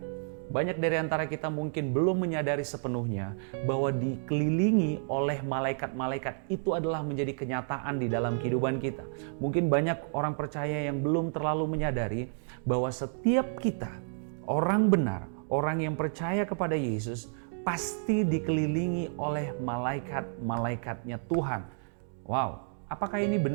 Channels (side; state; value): left; silent; digital silence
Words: Banyak dari antara kita mungkin belum menyadari sepenuhnya bahwa dikelilingi oleh malaikat-malaikat itu adalah menjadi kenyataan di dalam kehidupan kita. Mungkin banyak orang percaya yang belum terlalu menyadari bahwa setiap kita, orang benar, orang yang percaya kepada Yesus, pasti dikelilingi oleh malaikat-malaikatnya Tuhan. Wow, apakah ini